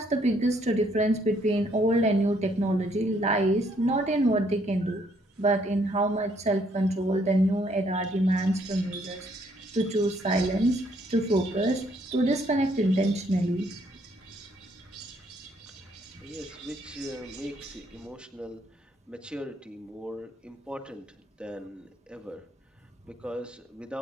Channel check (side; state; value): both; normal; correlation 0.68